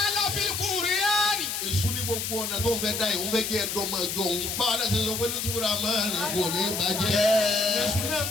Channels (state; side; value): noise; left; hiss, 3 dB below the sound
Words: fil Qur'ani. èṣù ní gbogbo ọ̀nà tó ń fẹ́ dá ìwọ́n fẹ́ jẹ́ ẹ̀dọ́mọ ẹjọ́ òun. báwa náà ṣe sọ pé lótúbúra máa ń rìn kò ní bàjẹ́. èṣù náà ń